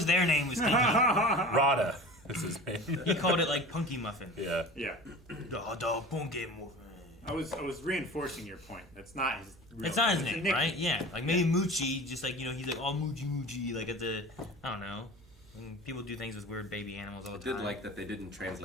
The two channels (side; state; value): right; noise; hum, 26 dB below the sound